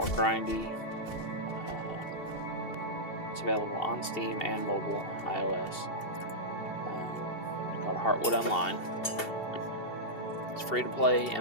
grindy. It's available on Steam and mobile, iOS. It's called Heartwood Online. It's free to play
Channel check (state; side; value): late; right; 2.7 ms